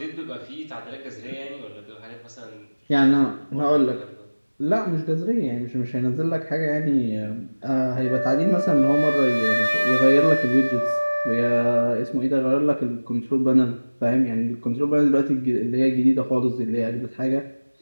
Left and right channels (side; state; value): both; inverted; correlation -1.00